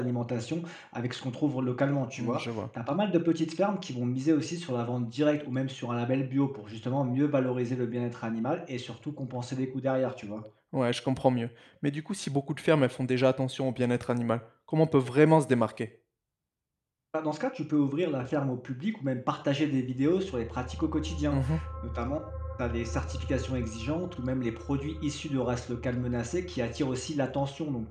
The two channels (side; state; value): both; identical; correlation 1.00